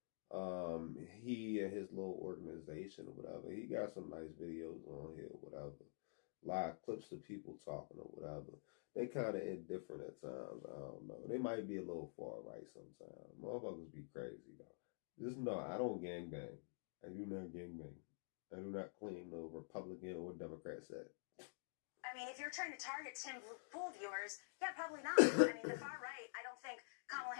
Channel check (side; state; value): right; silent; digital silence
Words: He and his little organization or whatever. He got some nice videos on here, whatever. Live clips of people talking or whatever. They kind of indifferent at times. I don't know. They might be a little far right sometimes. Motherfuckers be crazy though. Just know I don't gangbang. I do not gangbang. I do not claim no Republican or Democrat set. I mean, if you're trying to target Tim Pool viewers, yeah, probably not. I mean, the far right, I don't think Kamala